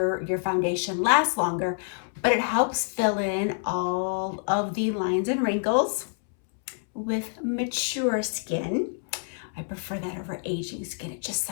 foundation last longer, but it helps fill in all of the lines and wrinkles with mature skin. I prefer that over aging skin. It just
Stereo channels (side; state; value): right; silent; 60 dB below the other